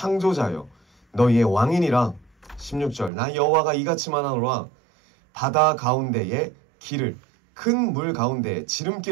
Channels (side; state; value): left; drops out; at 3.1 s